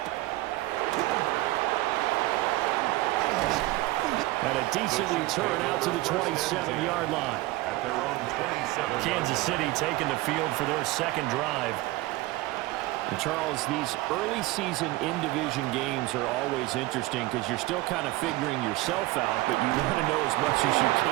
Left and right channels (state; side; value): quieter; left; 19.0 dB